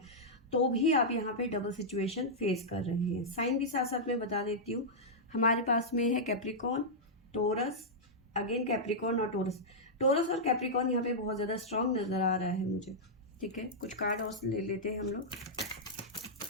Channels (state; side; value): normal; both; correlation -0.09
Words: तो भी आप यहाँ पे डबल सिचुएशन फेस कर रहे हैं। साइन भी साथ साथ में बता देती हूँ, हमारे पास में है कैप्रिकॉन, टोरस, अगेन कैप्रिकॉन और टोरस। टोरस और कैप्रिकॉन यहाँ पे बहुत ज़्यादा स्ट्रांग नज़र आ रहा है मुझे, ठीक है। कुछ कार्ड और ले लेते हैं हम लोग।